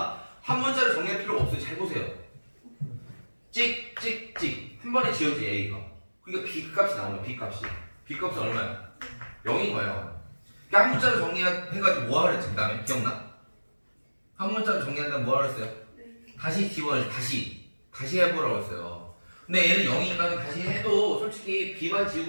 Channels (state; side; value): inverted; both; correlation -1.00